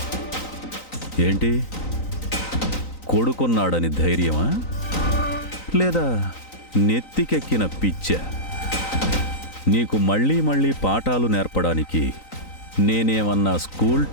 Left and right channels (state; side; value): late; right; 3.9 ms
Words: ఏంటి? కొడుకున్నాడని ధైర్యమా, లేదా నెత్తికెక్కిన పిచ్చా? నీకు మళ్ళీ మళ్ళీ పాఠాలు నేర్పడానికి నేనేమన్నా స్కూల్